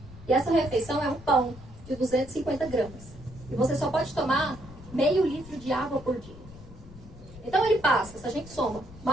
E essa refeição é um pão de 250 gramas. E você só pode tomar meio litro de água por dia. Então ele passa, se a gente soma,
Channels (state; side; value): noise; left; rumble, 18 dB below the sound